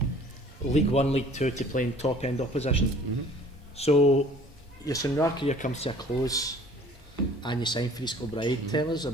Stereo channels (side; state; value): both; normal; correlation 0.51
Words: League 1, League 2 to playing top end opposition. So your Sunrar career comes to a close, and you sign for East Kilbride. Tell us